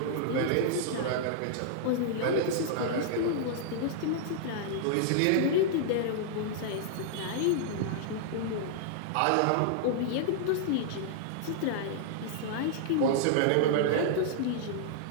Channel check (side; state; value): both; different; correlation -0.01